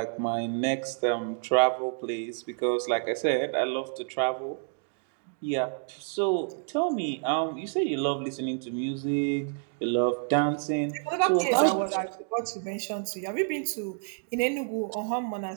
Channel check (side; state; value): left; silent; 59 dB below the other